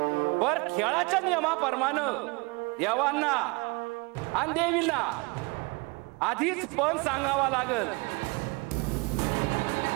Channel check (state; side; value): quieter; left; 28.7 dB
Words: पर खेळाच्या नियमाप्रमाणे देवांना आणि देवींना आधीच पण सांगावा लागल.